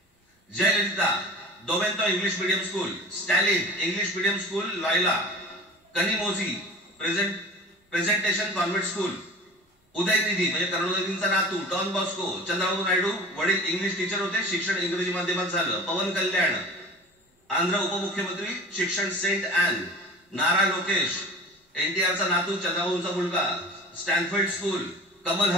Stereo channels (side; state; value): both; normal; correlation 0.38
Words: जयललिता दोवेंतो English medium school, Stalin English medium school Loyola, Kanimozhi presentation convent school, Udhayanidhi म्हणजे करुणानिधींचा नातू डॉन बॉस्को, चंद्रबाबू नायडू वडील इंग्लिश टीचर होते, शिक्षण इंग्रजी माध्यमात झालं. पवन कल्याण आंध्र उपमुख्यमंत्री, शिक्षण सेंट ॲन. नारा लोकेश एनटीआरचा नातू, चंद्रबाबूंचा मुलगा, Stanford school. Kamal